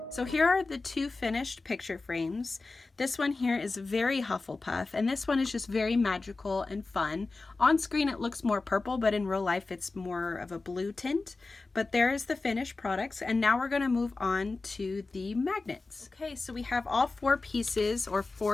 So here are the 2 finished picture frames. This one here is very Hufflepuff, and this one is just very magical and fun. On screen it looks more purple, but in real life it's more of a blue tint. But there is the finished products, and now we're going to move on to the magnets. Okay, so we have all 4 pieces or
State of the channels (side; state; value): right; quieter; 3.6 dB